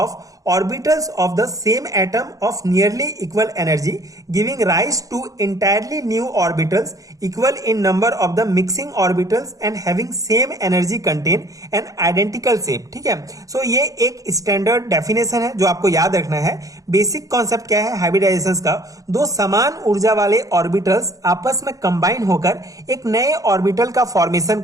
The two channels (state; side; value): late; left; 0.17 ms